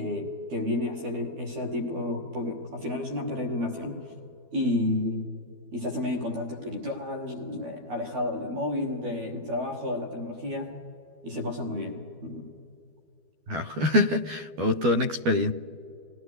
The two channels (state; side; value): late; left; 12 ms